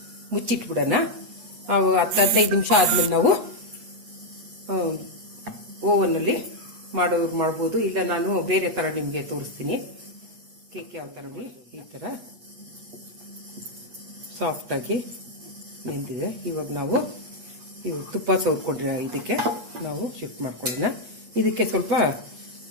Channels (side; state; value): left; late; 8.4 ms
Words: ಮುಚ್ಚಿಟ್ಬಿಡೋಣ. 10-15 ನಿಮಿಷ ಆದ್ಮೇಲೆ ನಾವು ಓವನ್ನಲ್ಲಿ ಮಾಡ್ಬೋದು. ಇಲ್ಲ ನಾನು ಬೇರೆ ಥರ ನಿಮಗೆ ತೋರಿಸ್ತೀನಿ. ಕೇಕ್ ಯಾವ ಥರ ನೋಡಿ, ಈ ಥರ ಸಾಫ್ಟಾಗಿ ನೆಂದಿದೆ. ಇವಾಗ ನಾವು ತುಪ್ಪ ಸವರ್ಕೊಂಡ್ರೆ ಇದಕ್ಕೆ ನಾವು ಶಿಫ್ಟ್ ಮಾಡ್ಕೊಳ್ಳೋಣ. ಇದಕ್ಕೆ ಸ್ವಲ್ಪ